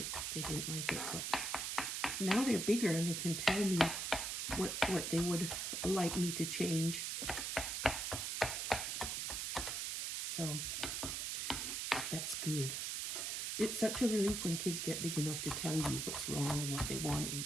they didn't like it. But now they're bigger and they can tell me what they would like me to change. So that's good. It's such a relief when kids get big enough to tell you what's wrong and what they want, and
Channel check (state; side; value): noise; right; hiss, 2 dB below the sound